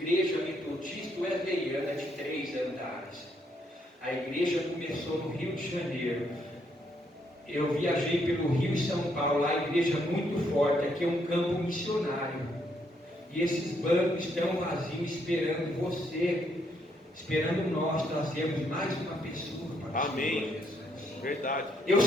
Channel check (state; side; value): normal; both; correlation 0.73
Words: metodistas wesleyanas de 3 andares. A igreja começou no Rio de Janeiro. Eu viajei pelo Rio e São Paulo, lá a igreja muito forte, aqui é um campo missionário. E esses bancos estão vazios, esperando você, esperando nós trazermos mais uma pessoa para o Amém. Verdade. Eu